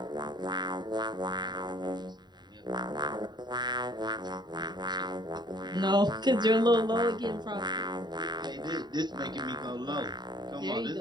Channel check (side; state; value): left; late; 0.21 ms